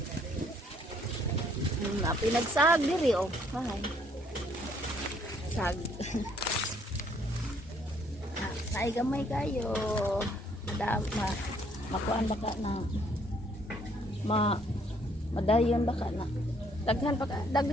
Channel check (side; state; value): both; normal; correlation 0.65